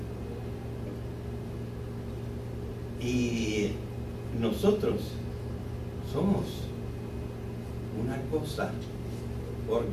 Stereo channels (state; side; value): identical; both; correlation 1.00